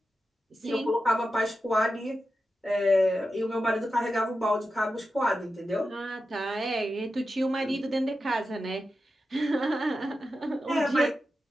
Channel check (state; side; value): normal; both; correlation 0.91